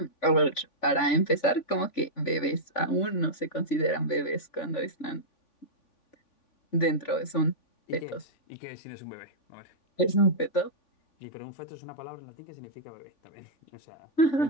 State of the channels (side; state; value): right; late; 3.5 ms